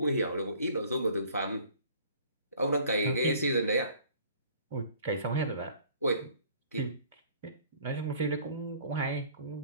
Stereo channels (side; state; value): both; inverted; correlation -0.53